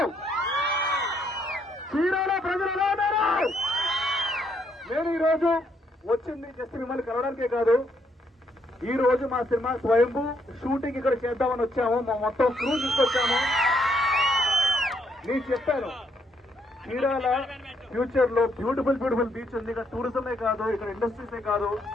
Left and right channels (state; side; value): normal; both; correlation 0.73